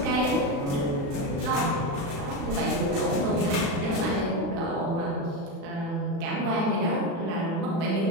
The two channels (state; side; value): late; left; 36 ms